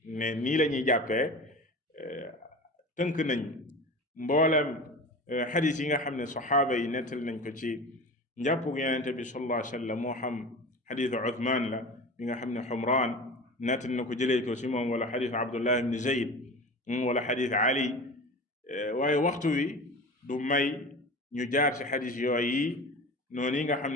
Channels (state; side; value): normal; both; correlation 0.33